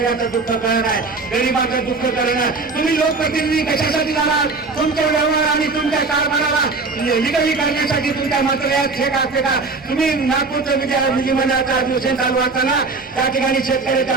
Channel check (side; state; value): left; quieter; 3.9 dB